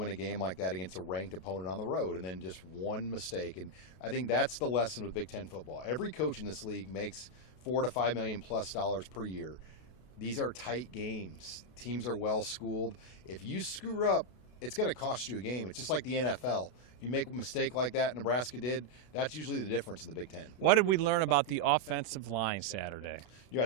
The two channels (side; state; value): right; late; 32 ms